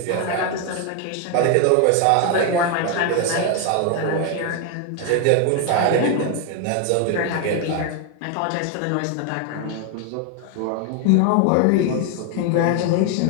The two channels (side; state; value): both; different; correlation 0.01